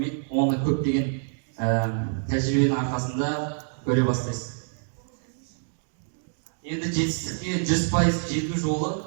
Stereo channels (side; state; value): left; silent; digital silence